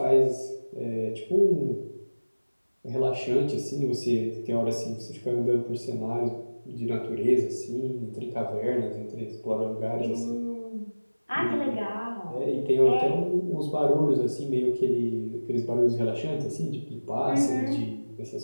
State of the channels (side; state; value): both; inverted; correlation -1.00